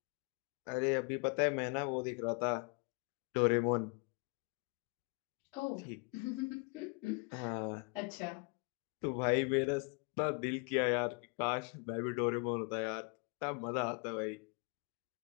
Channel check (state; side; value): quieter; right; 33.8 dB